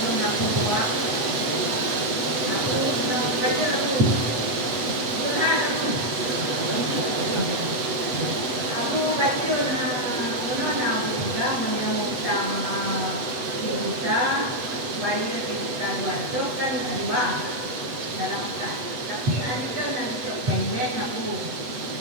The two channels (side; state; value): left; late; 8.1 ms